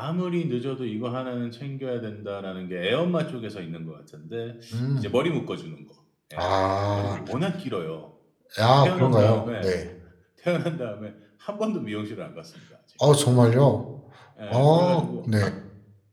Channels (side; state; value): both; identical; correlation 1.00